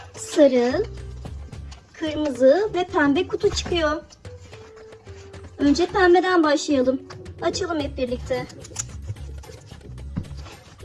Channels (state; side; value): identical; both; correlation 1.00